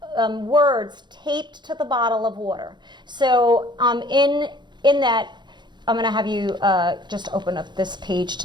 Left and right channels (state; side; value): late; left; 0.22 ms